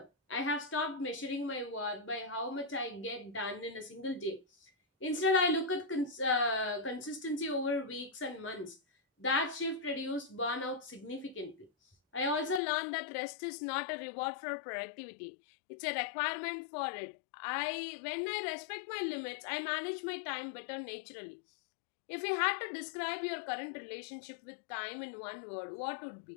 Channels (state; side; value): drops out; right; at 12.6 s